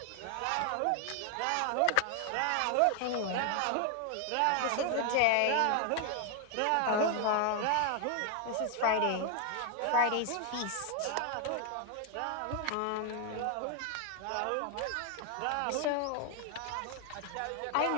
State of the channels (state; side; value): different; both; correlation 0.00